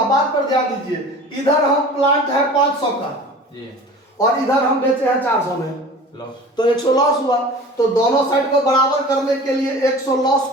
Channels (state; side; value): normal; both; correlation 0.40